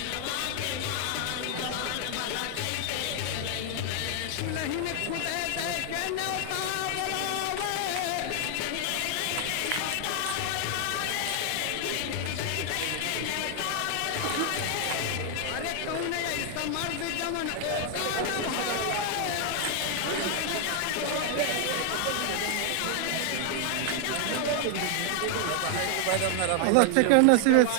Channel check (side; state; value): both; different; correlation 0.00